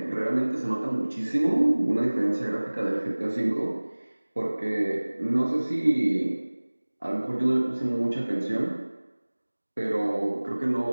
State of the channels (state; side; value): inverted; both; correlation -1.00